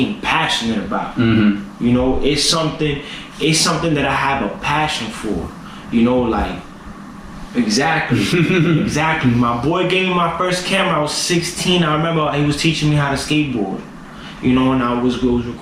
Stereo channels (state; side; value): identical; both; correlation 1.00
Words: passionate about. Mm-hmm. You know, it's something that I have a passion for. You know, like exactly. My boy gave me my first camera. I was 16. I remember he was teaching me how to skateboard. You know, and I was